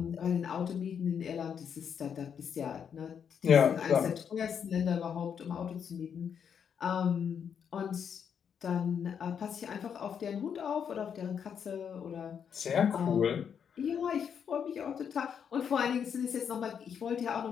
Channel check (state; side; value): quieter; right; 7.6 dB